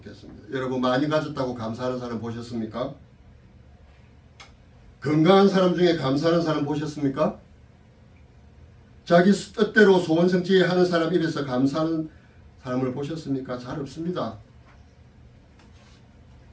여러분, 많이 가졌다고 감사하는 사람 보셨습니까? 건강한 사람 중에 감사하는 사람 보셨습니까? 자기 뜻대로 소원 성취하는 사람 입에서 감사하는 사람을 보셨습니까? 잘 없습니다.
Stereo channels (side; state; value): both; identical; correlation 1.00